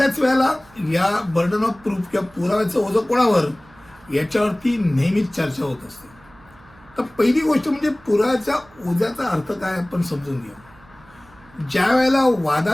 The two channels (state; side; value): noise; right; hum, 26 dB below the sound